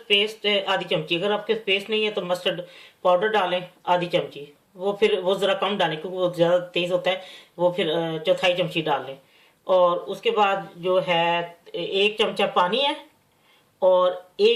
पेस्ट आधी चमची। अगर आपके पेस्ट नहीं है तो मस्टर्ड पाउडर डालें आधी चमची। वो ज़रा कम डालें क्योंकि वो ज़्यादा तेज़ होता है। वो फिर चौथाई चमची डाल लें। और उसके बाद जो है 1 चमचा पानी है, और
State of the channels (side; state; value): both; identical; correlation 1.00